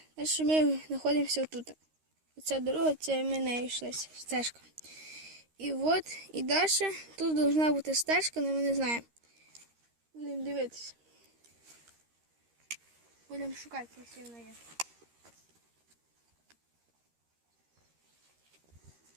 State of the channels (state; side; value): late; left; 13 ms